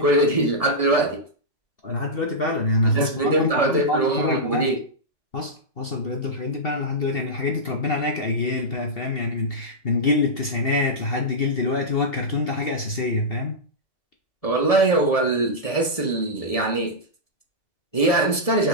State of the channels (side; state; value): right; late; 1.7 ms